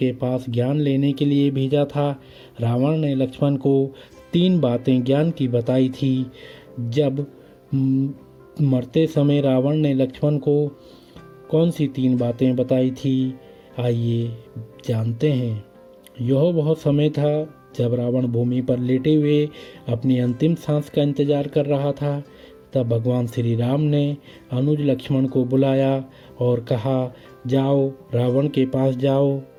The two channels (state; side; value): identical; both; correlation 1.00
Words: पास ज्ञान लेने के लिए भेजा था। रावण ने लक्ष्मण को 3 बातें ज्ञान की बताई थी। जब मरते समय रावण ने लक्ष्मण को कौन सी 3 बातें बताई थी, आइए जानते हैं। यह वह समय था जब रावण भूमि पर लेटे हुए अपनी अंतिम सांस का इंतजार कर रहा था। तब भगवान श्री राम ने अनुज लक्ष्मण को बुलाया और कहा, जाओ रावण के पास जाओ